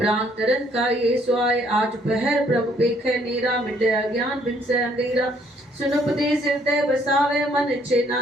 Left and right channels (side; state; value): both; normal; correlation 0.65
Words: तरन का ये स्वाय। आज पहर प्रभु पेखे नीरा, मिटे अज्ञान बिन से अंधेरा, सुन उपदेश हृदय बसावे, मन इच्छे